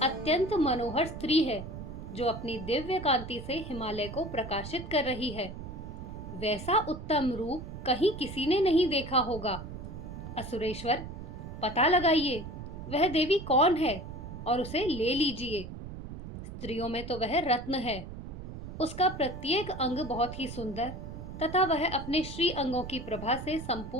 अत्यंत मनोहर स्त्री है जो अपनी दिव्य कांति से हिमालय को प्रकाशित कर रही है। वैसा उत्तम रूप कहीं किसी ने नहीं देखा होगा। असुरेश्वर, पता लगाइए वह देवी कौन है और उसे ले लीजिए। स्त्रियों में तो वह रत्न है। उसका प्रत्येक अंग बहुत ही सुंदर तथा वह अपने श्री अंगों की प्रभा से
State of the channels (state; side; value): noise; right; rumble, 10 dB below the sound